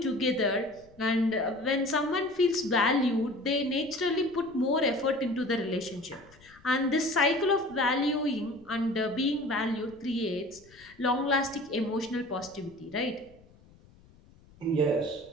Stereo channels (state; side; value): noise; left; rumble, 27 dB below the sound